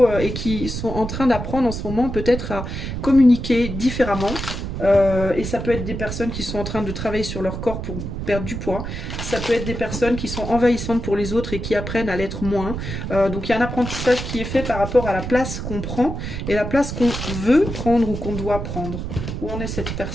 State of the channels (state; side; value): noise; right; rumble, 5 dB below the sound